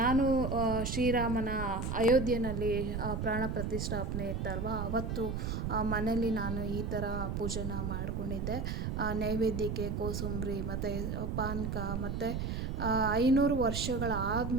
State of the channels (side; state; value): right; noise; rumble, 2 dB below the sound